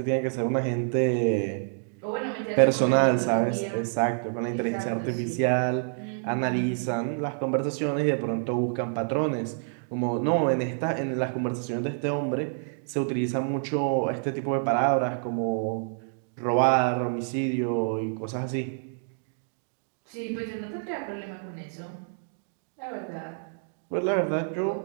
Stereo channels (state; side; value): silent; left; digital silence